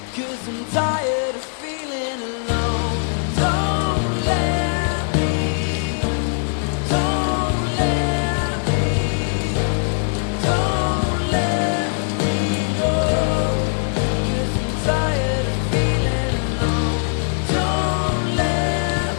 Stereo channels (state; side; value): silent; right; 65 dB below the other